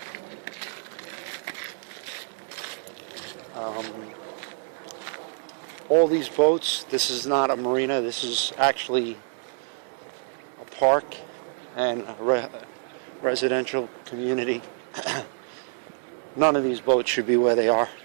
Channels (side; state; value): left; silent; 60 dB below the other